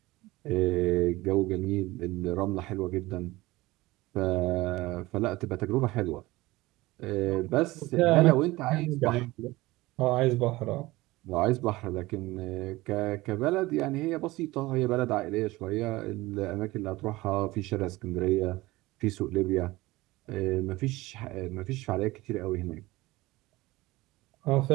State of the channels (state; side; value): quieter; left; 19.7 dB